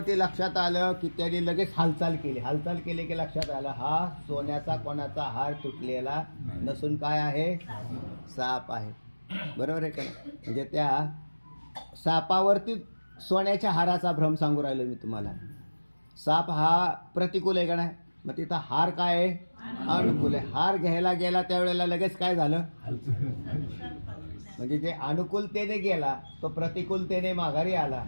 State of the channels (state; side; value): inverted; both; correlation -1.00